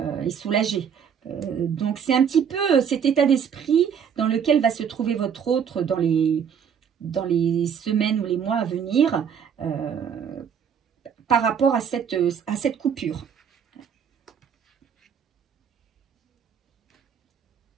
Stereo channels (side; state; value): left; quieter; 7.6 dB